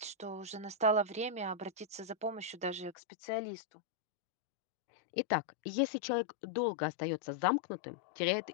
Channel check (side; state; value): right; drops out; at 3.0 s